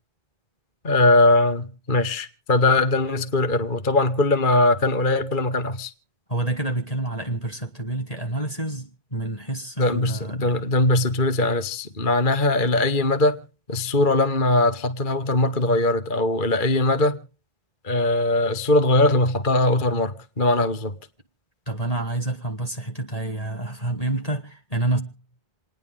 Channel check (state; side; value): late; right; 2.3 ms